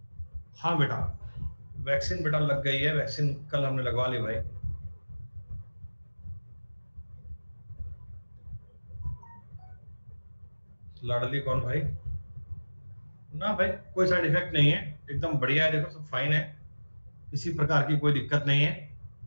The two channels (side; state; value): both; inverted; correlation -1.00